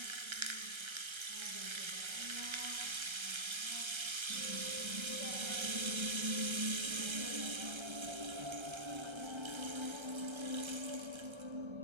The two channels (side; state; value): left; late; 1.3 ms